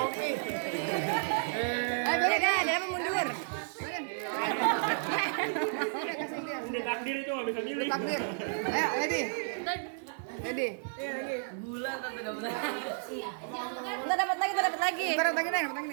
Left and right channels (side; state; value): left; silent; digital silence